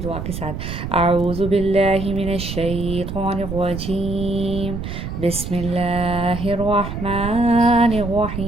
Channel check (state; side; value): noise; right; rumble, 6 dB below the sound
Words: کے ساتھ. اعوذ باللہ من الشیطان الرجیم، بسم اللہ الرحمن